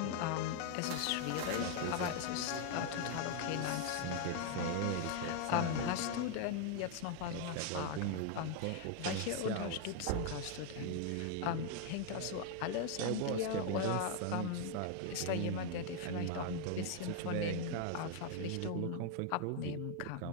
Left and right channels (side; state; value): both; different; correlation 0.00